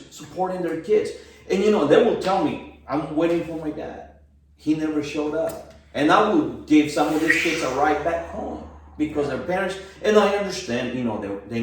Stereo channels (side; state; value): both; identical; correlation 1.00